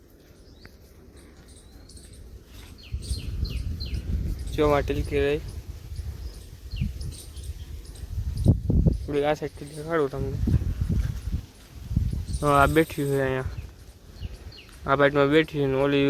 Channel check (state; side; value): identical; both; correlation 1.00